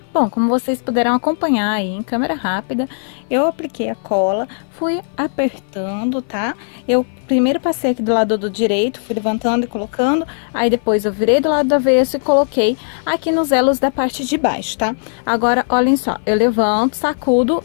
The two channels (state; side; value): silent; right; 56 dB below the other